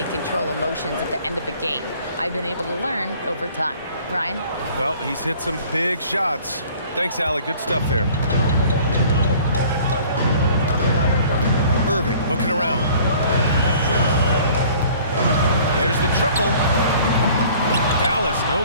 control emotions at the end of a game. I've been able to learn over time. Ryan? Well, he's hit some big shots. Thanks, Allie. Good stuff there. Irving looking around. There's the triple. Dallas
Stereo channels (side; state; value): both; inverted; correlation -0.52